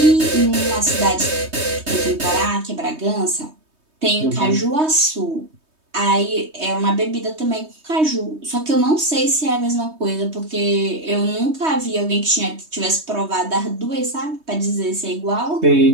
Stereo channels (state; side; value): late; left; 3.2 ms